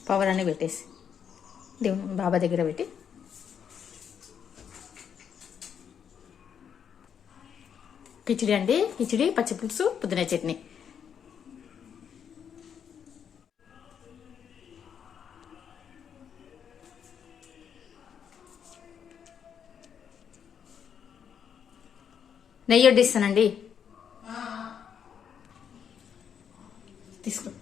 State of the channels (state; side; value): quieter; right; 7.9 dB